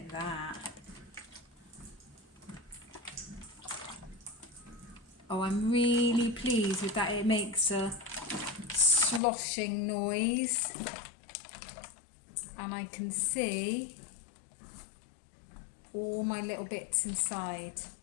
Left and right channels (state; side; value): drops out; right; at 9.2 s